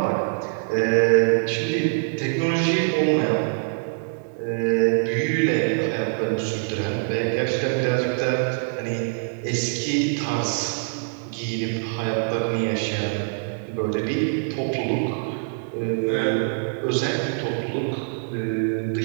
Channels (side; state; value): left; silent; digital silence